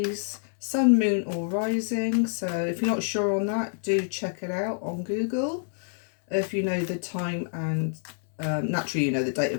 Sun, Moon or Rising. So if you're not sure on that, do check it out on Google. If you know the time and naturally you know the date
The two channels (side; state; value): right; silent; 60 dB below the other